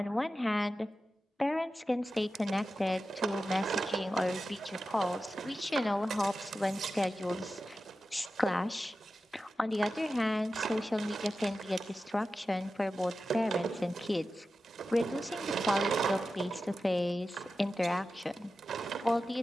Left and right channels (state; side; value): normal; both; correlation 0.93